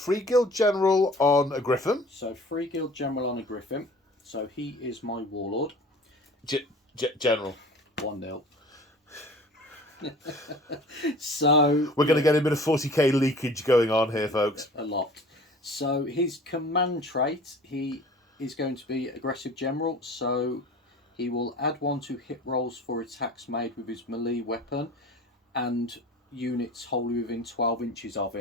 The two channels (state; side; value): normal; both; correlation 0.44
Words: Guild General on a Griffin. So Free Guild General on a Griffin. So he is my Warlord. General. 1-0. So we're going to get a bit of 40k leakage going on here, folks. A lot. So his command trait, he is going to be Aggressive General. So he will add 1 to hit rolls for attacks made with his melee weapon, and units wholly within 12 inches of